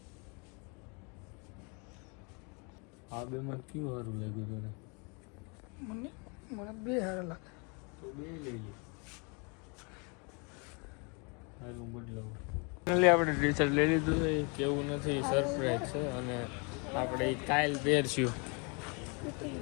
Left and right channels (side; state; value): right; quieter; 32.9 dB